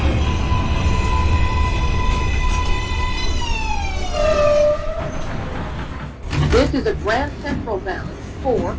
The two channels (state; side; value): identical; both; correlation 1.00